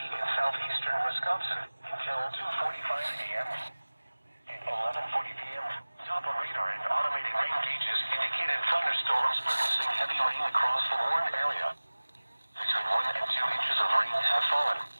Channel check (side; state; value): both; inverted; correlation -1.00